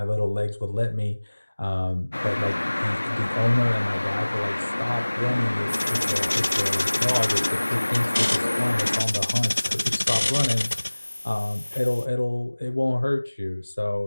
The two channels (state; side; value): inverted; both; correlation -1.00